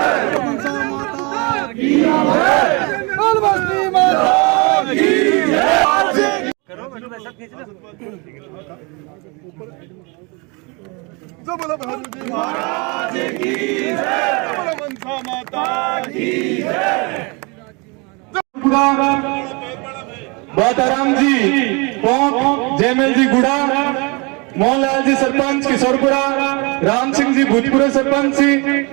महाराज की जय, मनसा माता की जय। बाताराम जी पोंक, जयमल जी गुड़ा, मोहनलाल जी सरपंच किशोरपुरा, राम सिंह जी भूतपूर्व सरपंच जी,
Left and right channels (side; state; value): left; quieter; 29.6 dB